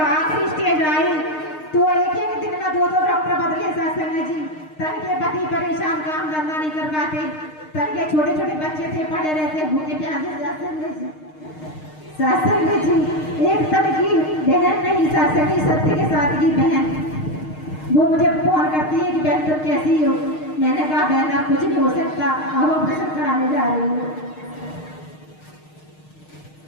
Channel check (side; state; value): right; late; 6.5 ms